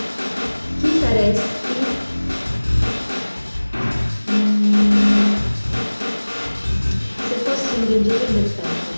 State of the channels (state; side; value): inverted; both; correlation -1.00